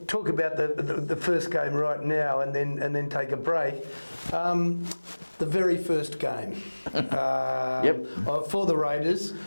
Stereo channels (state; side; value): inverted; both; correlation -1.00